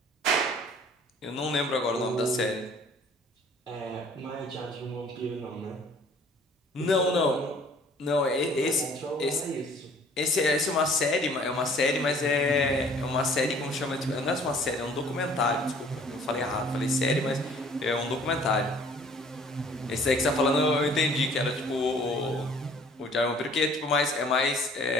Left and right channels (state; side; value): normal; both; correlation 0.54